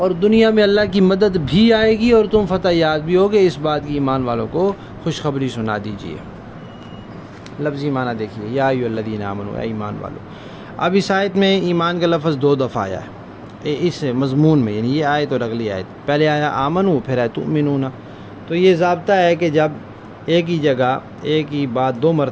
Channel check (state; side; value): identical; both; correlation 1.00